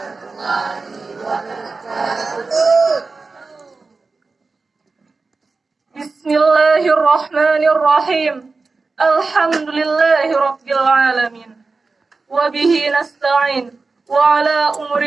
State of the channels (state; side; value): quieter; left; 4.0 dB